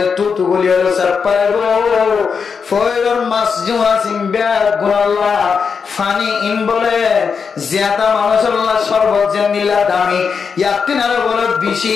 তুতু গুলি হলো সব পাইব ফইরর মাছ জুয়া সিম্বা গুনাল্লাহ ফানি ইন বলে জিয়াতা মানুষের শরবত যে নিলা দামি ইয়াতিনারে বলে বেশি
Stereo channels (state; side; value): quieter; right; 5.9 dB